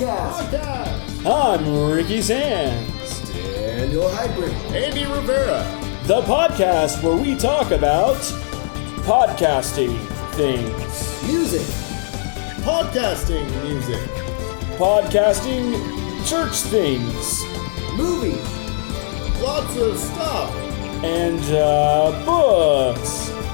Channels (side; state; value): right; silent; digital silence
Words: I'm Ricky Sands. Daniel Heidbrink. Andy Rivera. The podcast where we talk about podcasting things. Music. Podcasting music. Podcasting church things. Movies. Lots of stuff. And books.